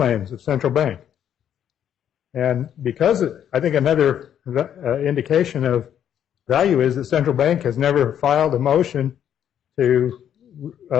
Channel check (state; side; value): quieter; right; 9.6 dB